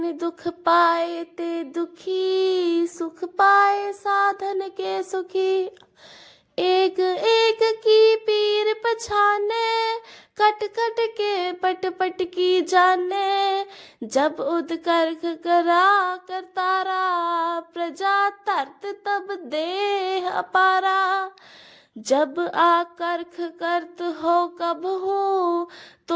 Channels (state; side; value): identical; both; correlation 1.00